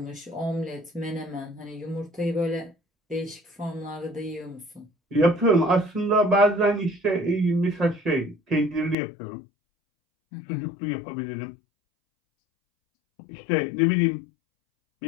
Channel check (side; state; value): right; drops out; at 9.0 s